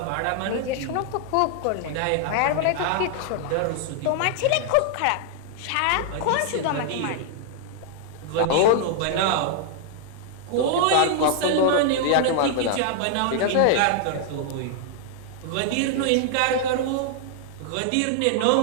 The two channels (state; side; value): different; both; correlation 0.00